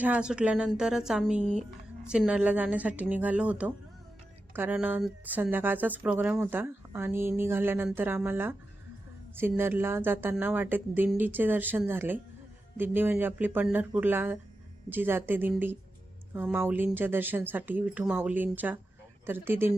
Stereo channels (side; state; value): both; normal; correlation 0.91